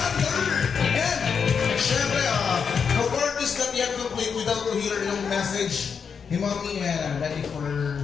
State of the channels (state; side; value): quieter; right; 6.3 dB